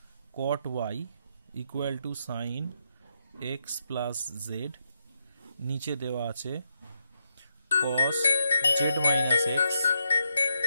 cot y equal to sine x plus z, নিচে দেওয়া আছে cos z minus x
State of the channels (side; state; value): both; inverted; correlation -0.82